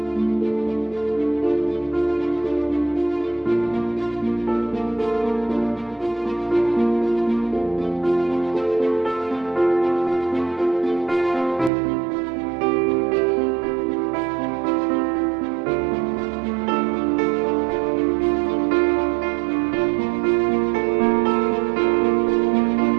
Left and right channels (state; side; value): drops out; left; at 11.7 s